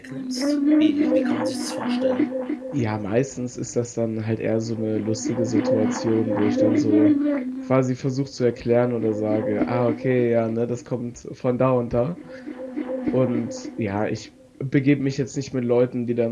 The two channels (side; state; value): both; identical; correlation 1.00